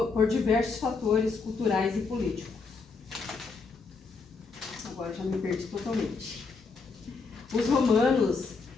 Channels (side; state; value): right; quieter; 4.5 dB